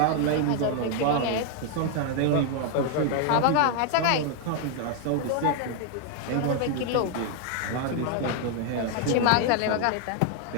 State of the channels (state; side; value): different; both; correlation 0.00